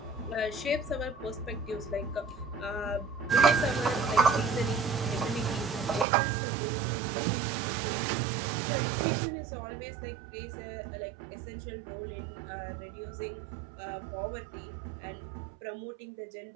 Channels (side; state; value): left; drops out; at 6.1 s